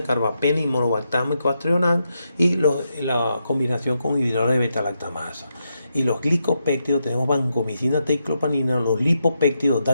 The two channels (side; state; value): both; inverted; correlation -0.84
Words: carbapenem, monobactámico, astrionan, y la combinación con inhibidores de beta-lactamasa. Y los glicopéptidos tenemos vancomicina, teclopanina, los lipopéptidos,